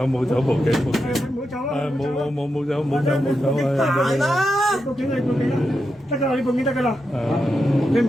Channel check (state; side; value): normal; both; correlation 0.86